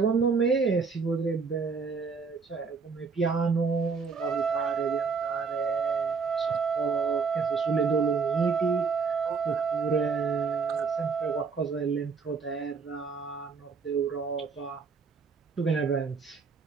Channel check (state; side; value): quieter; left; 5.1 dB